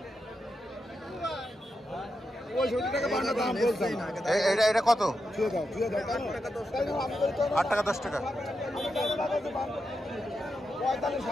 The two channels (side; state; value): both; normal; correlation 0.86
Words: এটা কত? 8 টাকা 10 টাকা।